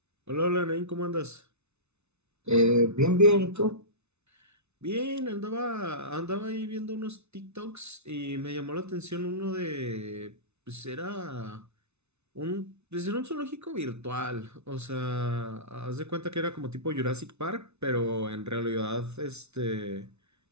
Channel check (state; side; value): late; left; 0.81 ms